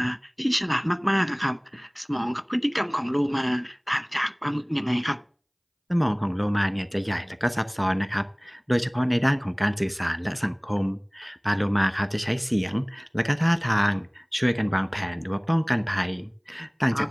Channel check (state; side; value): identical; both; correlation 1.00